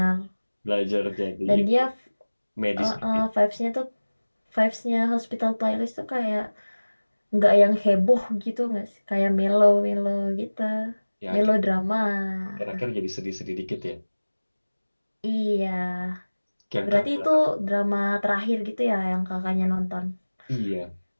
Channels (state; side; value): inverted; both; correlation -1.00